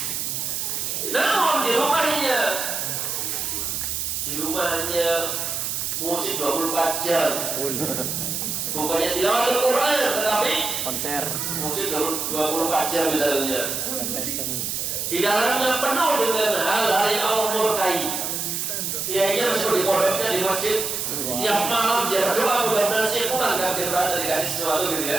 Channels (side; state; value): right; noise; hiss, 2 dB below the sound